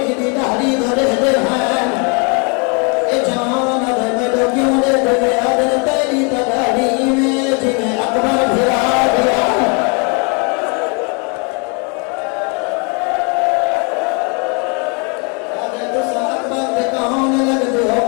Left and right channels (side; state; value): right; quieter; 34.8 dB